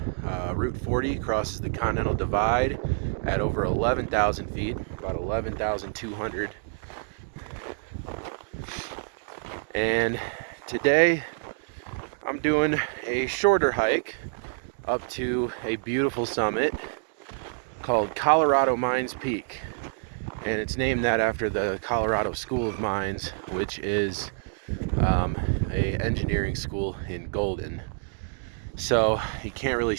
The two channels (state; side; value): silent; left; digital silence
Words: Route 40 crosses the Continental Divide at over 11,000 feet, about 11,200. And today I'm doing a shorter hike up to a beautiful summit called Colorado Mines Peak, and it's named that after the Colorado School of Mines, which is a engineering school in Golden. So you can't really